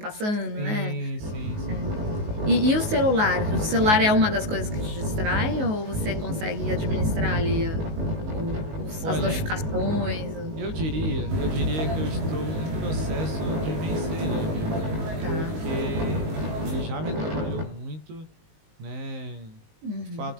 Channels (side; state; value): left; late; 19 ms